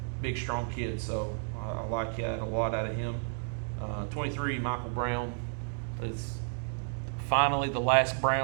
Big, strong kid. So I like that a lot out of him. 23, Michael Brown is finally the last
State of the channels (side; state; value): left; silent; digital silence